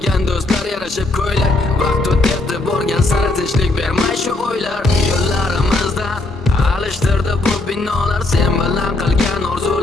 do'stlar yarashib ko'ylak. Vaqt o'tdi borgan sari tinchlik bermay shu o'ylar. Yo'llarimizdan alishtirdi bu binolar, sen bilan qilgan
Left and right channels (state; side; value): quieter; right; 3.4 dB